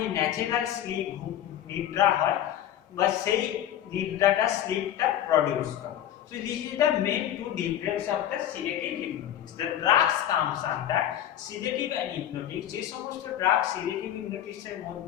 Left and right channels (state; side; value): quieter; right; 11.3 dB